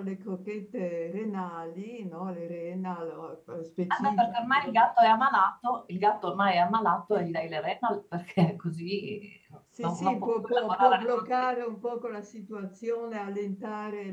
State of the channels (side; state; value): both; identical; correlation 1.00